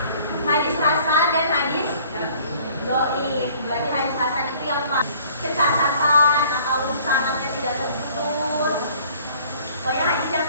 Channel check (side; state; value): both; inverted; correlation -0.54